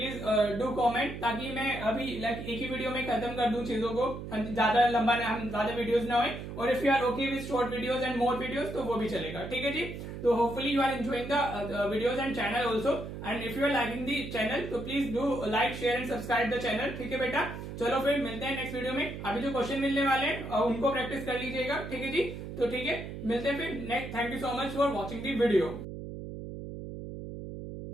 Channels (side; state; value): right; noise; hum, 8 dB below the sound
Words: डू कमेंट, ताकि मैं अभी लाइक एक ही वीडियो में खत्म कर दूं चीजों को, ज्यादा लंबा हम ज्यादा वीडियोस ना होए। और if you are okay with short videos and more videos, तो वो भी चलेगा, ठीक है जी। तो hopefully you are enjoying the videos and channel also, and if you are liking the channel तो please do like, share and subscribe the channel, ठीक है बेटा। चलो फिर मिलते हैं नेक्स्ट वीडियो में। अभी जो क्वेश्चन मिलने वाले हैं उनको प्रैक्टिस कर लीजिएगा, ठीक है जी। तो ठीक है, मिलते हैं फिर next. Thank you so much for watching the video.